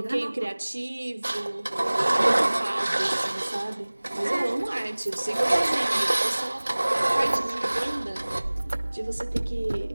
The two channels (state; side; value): inverted; both; correlation -1.00